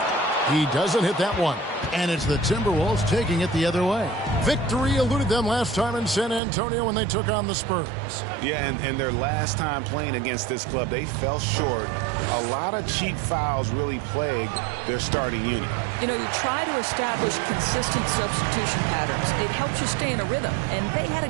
He doesn't hit that one. And it's the Timberwolves taking it the other way. Victory eluded them last time in San Antonio when they took on the Spurs. Yeah, and their last time playing against this club, they fell short. A lot of cheap fouls really plagued their starting unit. You know, you try to establish consistent substitution patterns. It helps you stay in a rhythm, and they had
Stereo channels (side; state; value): left; drops out; at 6.4 s